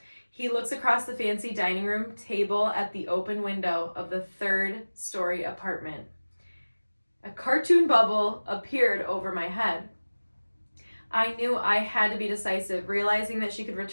He looks across the fancy dining room table at the open window of the 3rd-story apartment. A cartoon bubble appeared over my head. I knew I had to be decisive, realizing that she could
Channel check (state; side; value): inverted; both; correlation -1.00